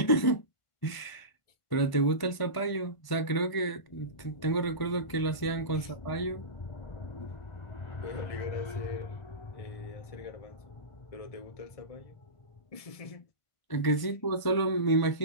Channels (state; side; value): late; right; 1.5 ms